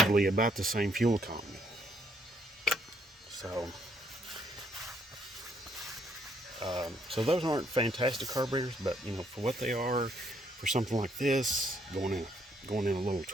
about the same fuel economy. So those aren't fantastic carburetors, but you know, for what they are, for something like this, going in a little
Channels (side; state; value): both; normal; correlation 0.70